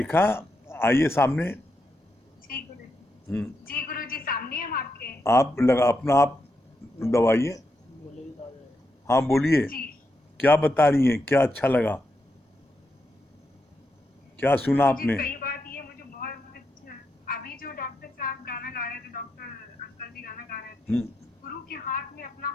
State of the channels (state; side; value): normal; both; correlation 0.83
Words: आइए सामने। जी गुरु जी। हम्म, जी गुरु जी, सामने हम आपके। आप लगा अपना आप दबाइए। हाँ बोलिए, जी क्या बता रही हैं, क्या अच्छा लगा, क्या सुना गुरु जी, आपने? कई बात ये मुझे बहुत अच्छा, अभी जो डॉक्टर साहब गाना गा रहे थे, डॉक्टर अंकल जी गाना गा रहे थे, हम्म, गुरु के हाथ में अपना